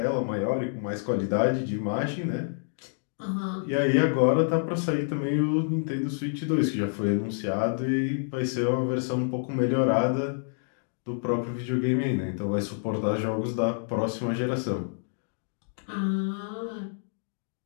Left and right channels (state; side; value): silent; right; digital silence